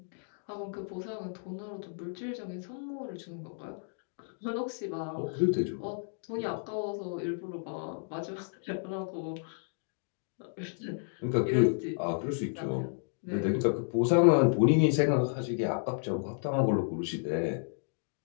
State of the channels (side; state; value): right; silent; digital silence